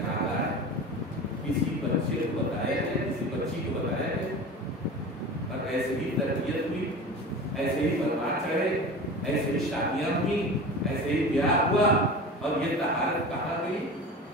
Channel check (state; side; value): normal; both; correlation 0.34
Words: ہے. کسی بچے کو بتایا ہے، کسی بچی کو بتایا ہے، اور ایسے ہی تربیت ہوئی، ایسے ہی پرواز چڑھے، ایسے ہی شادیاں ہوئی، ایسے ہی بیاہ ہوا. اور یہ طہارت کہاں گئی؟